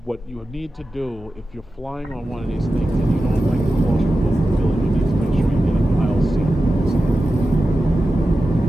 What you need to do if you're flying on one of these things and you don't like the claustrophobic feeling, you need to make sure you get an aisle seat.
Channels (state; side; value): normal; both; correlation 0.93